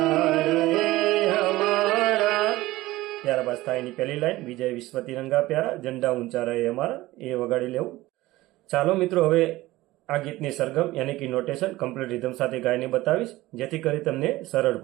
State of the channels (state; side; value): quieter; left; 18.1 dB